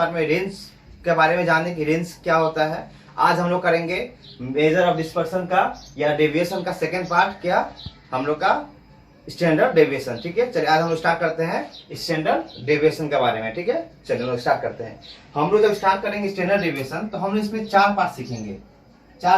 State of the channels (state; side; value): identical; both; correlation 1.00